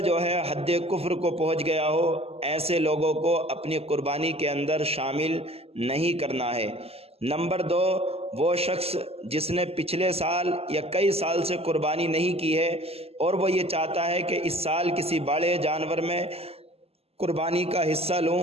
جو ہے حد کفر کو پہنچ گیا ہو، ایسے لوگوں کو اپنی قربانی کے اندر شامل نہیں کرنا ہے۔ نمبر 2، وہ شخص جس نے پچھلے سال یا کئی سال سے قربانی نہیں کی ہے اور وہ یہ چاہتا ہے کہ اس سال کسی بڑے جانور میں قربانی کا حصہ لوں،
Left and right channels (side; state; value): left; late; 0.29 ms